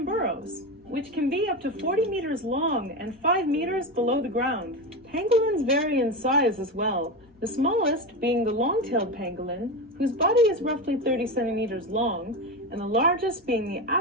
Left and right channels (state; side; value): normal; both; correlation 0.19